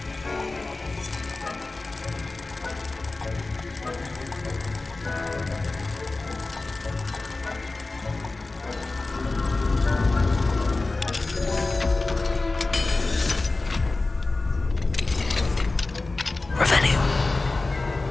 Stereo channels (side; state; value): right; quieter; 3.3 dB